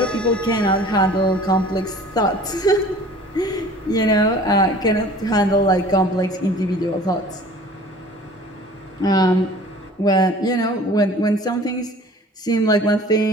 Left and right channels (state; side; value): normal; both; correlation 0.47